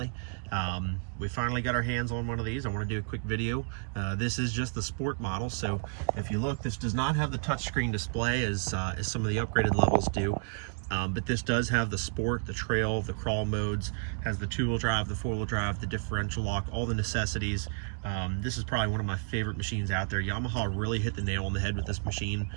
We finally got our hands on one of these. I want to do a quick video. This is just the Sport model, so if you look, this does not have the touchscreen display as some of the upgraded levels do. But this does have the Sport, the Trail, the Crawl modes, has the two-wheel drive, the four-wheel drive, the differential lock, all the necessities. This is probably one of my favorite machines out there. Yamaha really hit the nail on the head with this machine.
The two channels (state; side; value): silent; left; 55 dB below the other